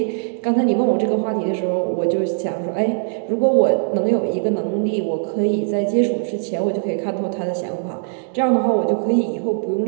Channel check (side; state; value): left; silent; digital silence